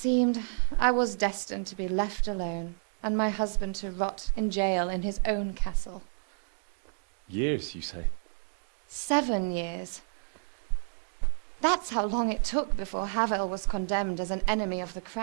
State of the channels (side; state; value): left; silent; digital silence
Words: I was destined to be left alone and my husband to rot in jail in his own castle. Years, you say? 7 years. That's how long it took before Havel was condemned as an enemy of the